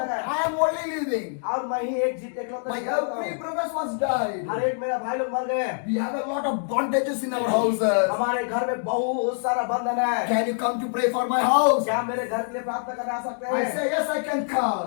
लगे I am only living. और मैं ही एक इकलौता My जीवित every हूँ। brothers was died. हर एक मेरा भाई लोग मर गए। We have a lot of bondages in our houses. हमारे घर में बहुत सारा बंधन है। Can you come to pray for my house? क्या मेरे घर के लिए प्रार्थना करने आ सकते I हैं? say yes, I can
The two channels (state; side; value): silent; right; digital silence